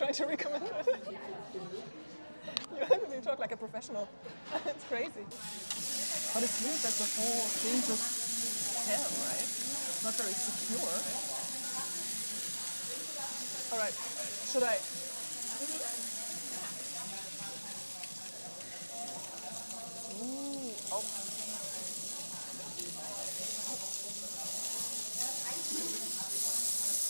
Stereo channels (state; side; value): inverted; both; correlation -1.00